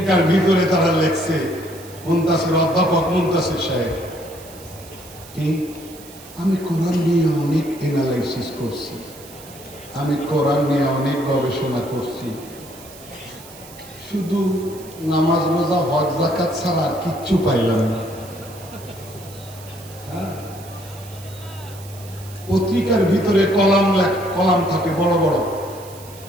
ভিতরে তারা লিখছে, মুনতাসির, অধ্যাপক মুনতাসির সাহেব, আমি কোরআন নিয়ে অনেক এনালাইসিস করছি, আমি কোরআন নিয়ে অনেক গবেষণা করছি, শুধু নামাজ রোজা হজ যাকাত ছাড়া কিচ্ছু পাইলাম না। পত্রিকার ভিতরে কলাম থাকে বড় বড়,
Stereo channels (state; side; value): noise; right; hiss, 19 dB below the sound